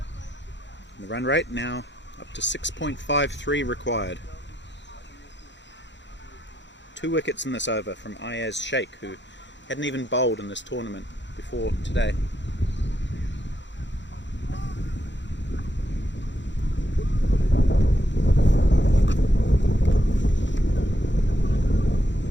The run rate now up to 6.53 required. 2 wickets in this over from Ayaz Sheikh, who hadn't even bowled in this tournament before today.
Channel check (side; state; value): both; normal; correlation 0.79